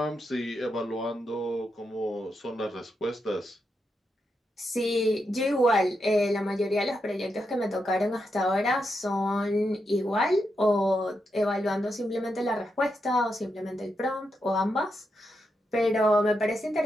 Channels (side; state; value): both; normal; correlation 0.84